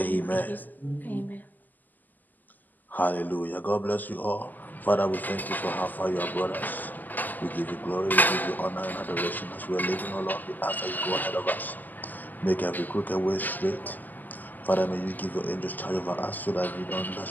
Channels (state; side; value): late; right; 0.085 ms